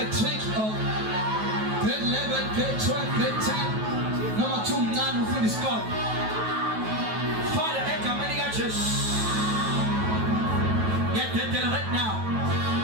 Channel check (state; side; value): late; left; 9.2 ms